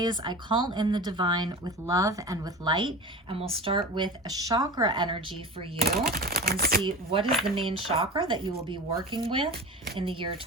I call in the divine with love and with light, and we'll start with a chakra energy for you and see what is the main chakra that you will be working with in the year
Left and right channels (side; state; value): both; normal; correlation 0.32